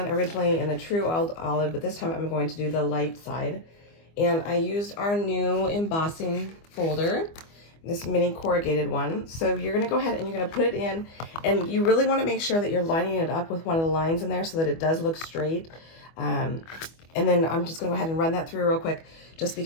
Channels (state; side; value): late; right; 25 ms